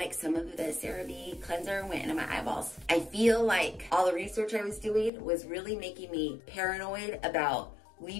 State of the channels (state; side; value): drops out; right; at 5.1 s